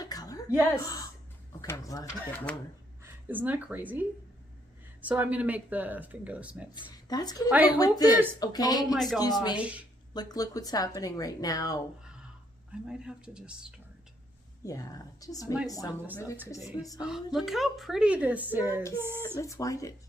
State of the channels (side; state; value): both; normal; correlation 0.71